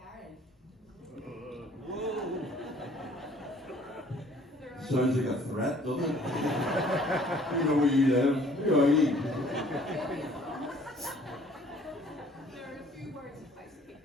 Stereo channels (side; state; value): both; normal; correlation 0.57